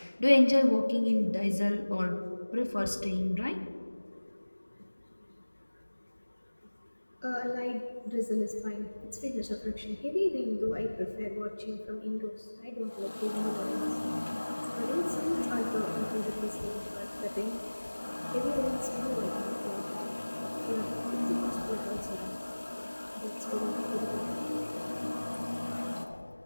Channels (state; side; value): inverted; both; correlation -1.00